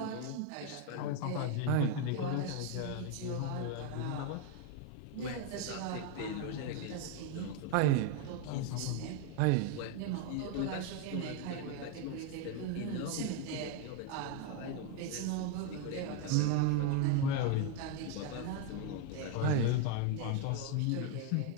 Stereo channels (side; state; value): both; different; correlation 0.01